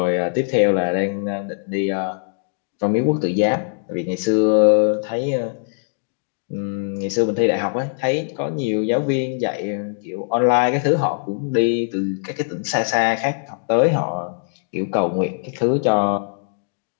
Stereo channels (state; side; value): silent; right; digital silence